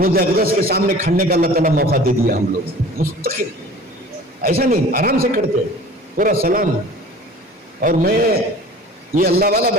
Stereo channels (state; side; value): normal; both; correlation 0.44